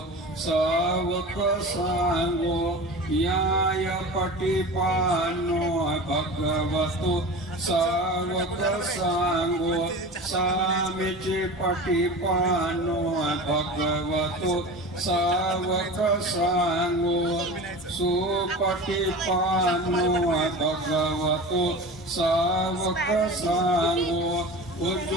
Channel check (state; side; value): normal; both; correlation 0.33